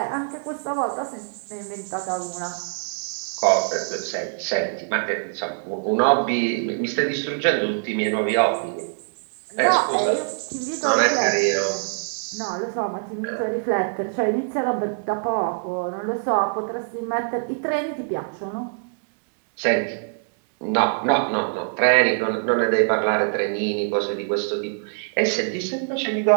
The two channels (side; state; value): left; silent; digital silence